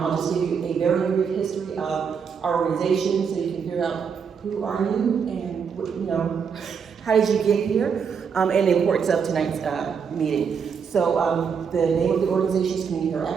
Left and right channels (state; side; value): quieter; left; 6.5 dB